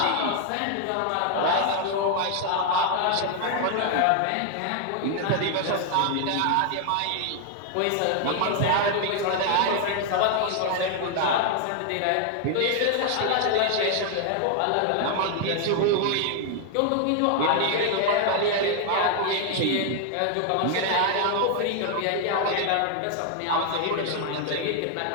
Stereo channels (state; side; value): different; both; correlation 0.00